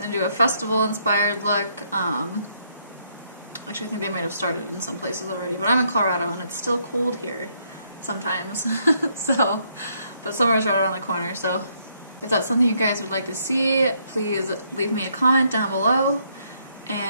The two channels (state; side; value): inverted; both; correlation -0.72